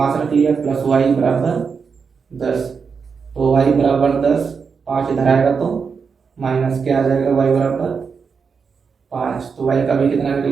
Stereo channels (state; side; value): quieter; left; 5.7 dB